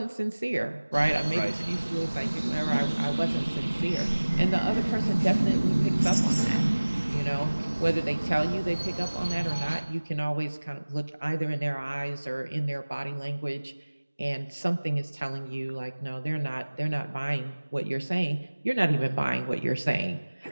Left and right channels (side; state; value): both; inverted; correlation -1.00